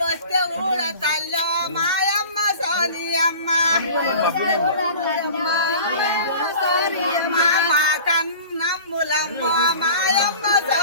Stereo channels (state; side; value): inverted; both; correlation -0.41